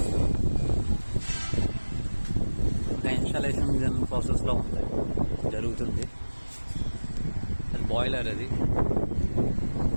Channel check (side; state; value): both; inverted; correlation -1.00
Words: ఇన్స్టాలేషన్ ప్రాసెస్లో ఉంది, జరుగుతుంది. అది బాయిలర్. అది